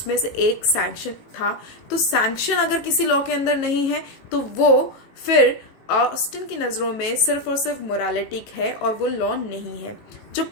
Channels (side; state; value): right; late; 18 ms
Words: से एक सैंक्शन था। तो सैंक्शन अगर किसी लॉ के अंदर नहीं है तो वो फिर ऑस्टिन की नज़रों में सिर्फ और सिर्फ मोरालिटी है और वो लॉ नहीं है। जो